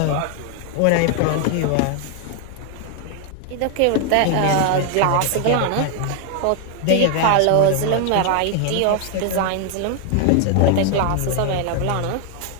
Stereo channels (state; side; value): different; both; correlation 0.00